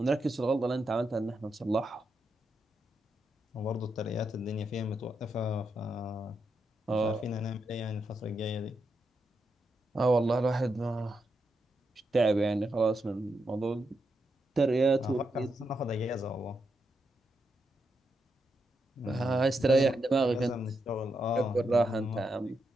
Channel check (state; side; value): normal; both; correlation 0.83